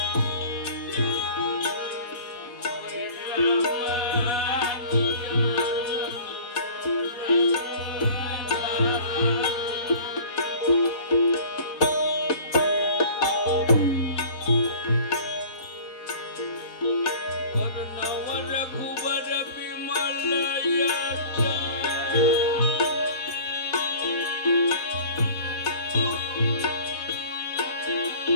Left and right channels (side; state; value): right; late; 4.1 ms